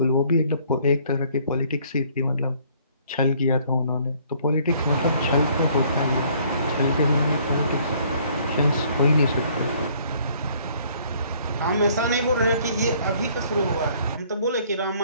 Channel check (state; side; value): inverted; both; correlation -0.60